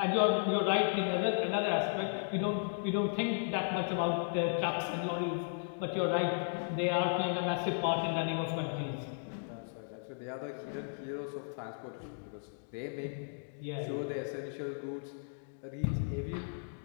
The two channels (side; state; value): right; silent; digital silence